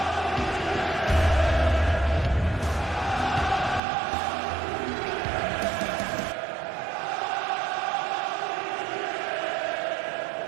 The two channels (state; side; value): drops out; left; at 3.8 s